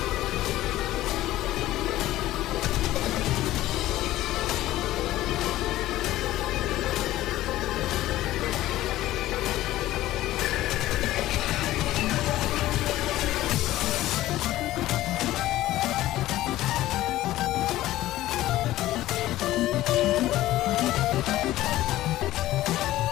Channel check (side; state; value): right; quieter; 15.4 dB